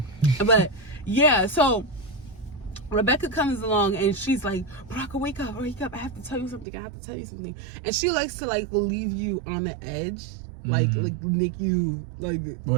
But yeah, so Rebecca comes along and she's like, Baraka, wake up, I have to tell you something, and she likes to leave you on the edge, like make you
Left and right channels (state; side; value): drops out; left; at 6.7 s